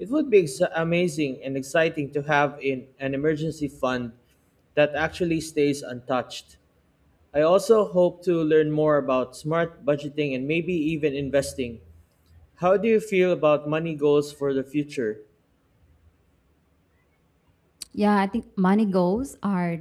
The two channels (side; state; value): both; identical; correlation 1.00